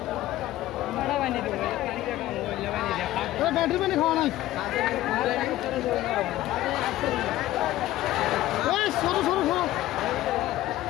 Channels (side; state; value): right; quieter; 15.1 dB